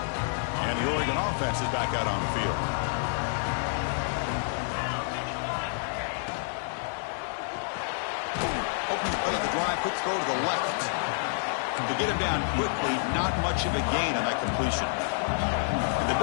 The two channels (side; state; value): right; silent; digital silence